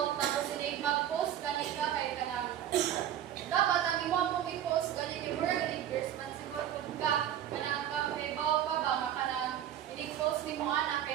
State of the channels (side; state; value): left; quieter; 10.9 dB